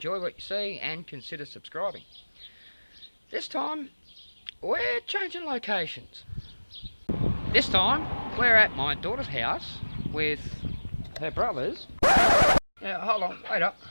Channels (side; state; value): both; inverted; correlation -1.00